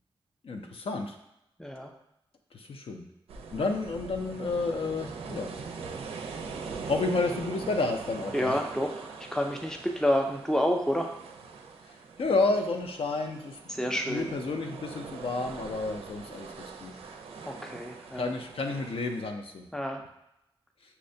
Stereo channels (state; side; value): normal; both; correlation 0.70